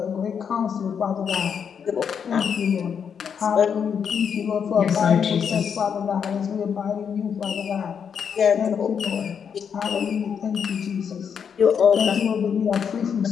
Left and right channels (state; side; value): quieter; right; 7.2 dB